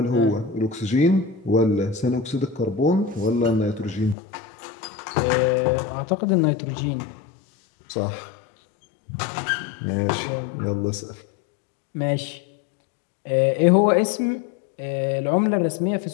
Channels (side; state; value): right; drops out; at 4.2 s